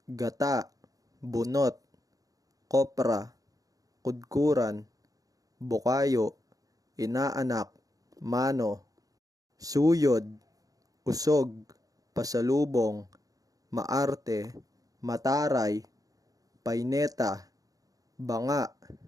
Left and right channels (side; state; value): left; late; 0.17 ms